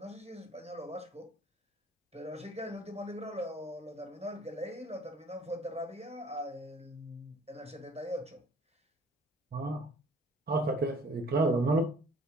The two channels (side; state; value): both; normal; correlation 0.54